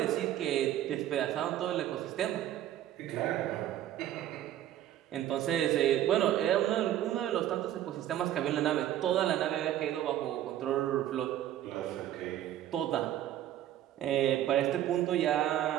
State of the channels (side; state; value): left; quieter; 12.2 dB